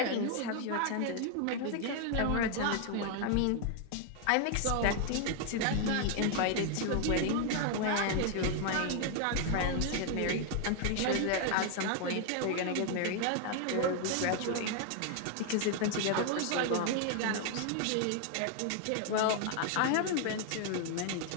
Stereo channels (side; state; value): both; different; correlation 0.00